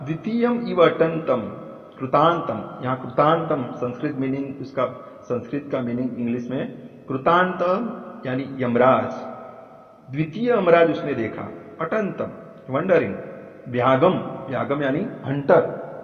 द्वितीयम इव अटंतम कृतांतम. यहाँ कृतांतम संस्कृत मीनिंग, उसका संस्कृत का मीनिंग इंग्लिश में कृतांत यानी यमराज. द्वितीय यमराज उसने देखा. अटंतम वंडरिंग. व्यागम यानी हंटर.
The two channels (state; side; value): identical; both; correlation 1.00